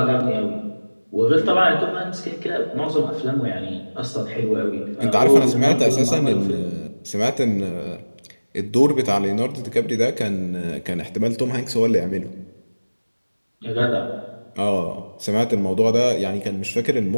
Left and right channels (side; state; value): both; inverted; correlation -1.00